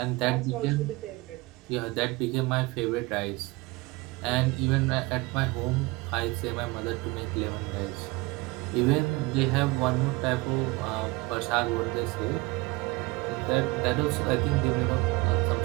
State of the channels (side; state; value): left; quieter; 23.2 dB